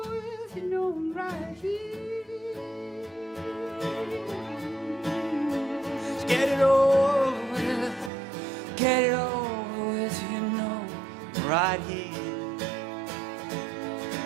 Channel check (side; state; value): left; drops out; at 8.1 s